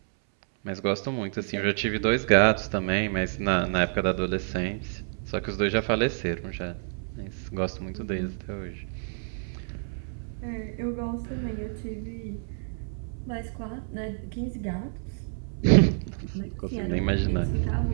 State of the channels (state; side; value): silent; left; 59 dB below the other